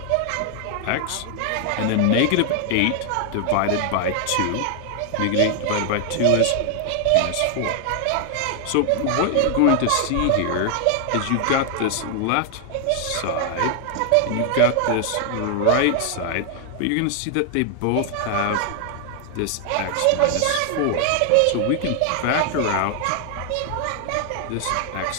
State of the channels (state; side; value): different; both; correlation 0.00